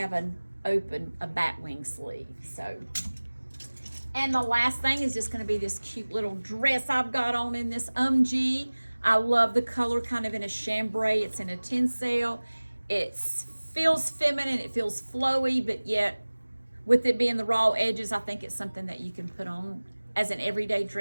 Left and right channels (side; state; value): both; inverted; correlation -1.00